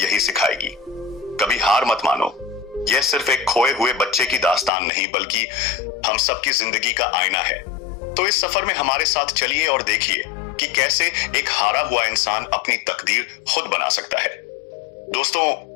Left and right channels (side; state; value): right; drops out; at 4.7 s